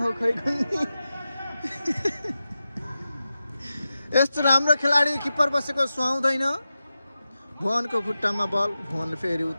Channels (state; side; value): inverted; both; correlation -0.92